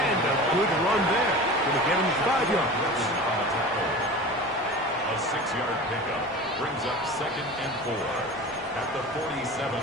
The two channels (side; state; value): both; normal; correlation 0.34